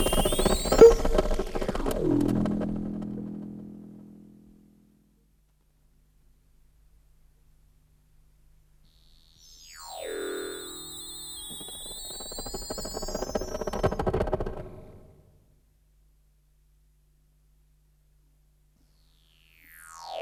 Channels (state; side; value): identical; both; correlation 1.00